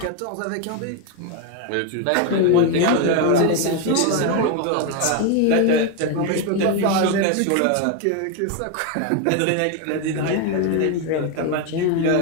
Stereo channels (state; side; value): different; both; correlation 0.02